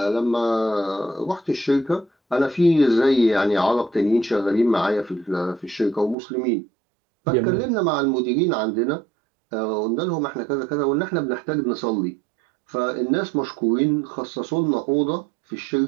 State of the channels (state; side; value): drops out; left; at 6.2 s